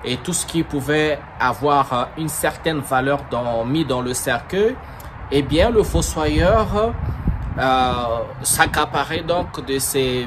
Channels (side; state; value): both; identical; correlation 1.00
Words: et tout ce qui pouvait avoir une certaine valeur mis dans le cercueil, eh bien, le fossoyeur s'accaparait donc de